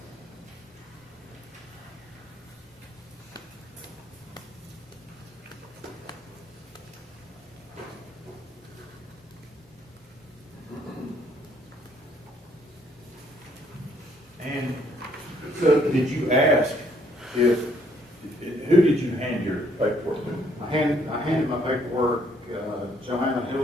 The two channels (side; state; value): both; normal; correlation 0.66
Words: So did you ask if, who did you hand your paperwork to? I handed my paperwork, Joanna